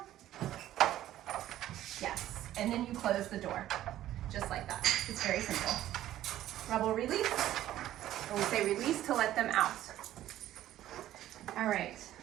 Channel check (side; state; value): left; quieter; 13.3 dB